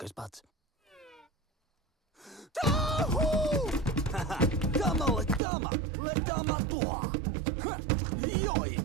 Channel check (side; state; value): left; drops out; at 5.4 s